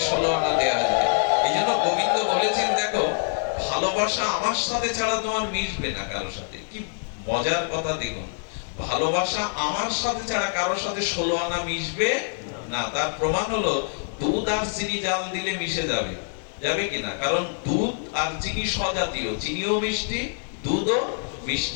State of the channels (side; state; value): right; silent; 61 dB below the other